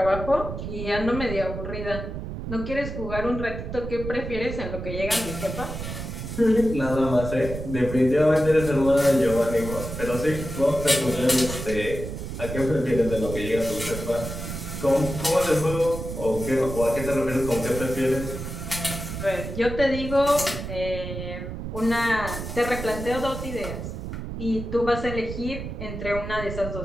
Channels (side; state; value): right; noise; rumble, 7 dB below the sound